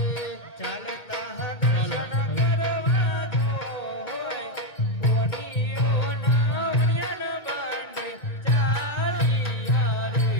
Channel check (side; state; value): right; late; 1.8 ms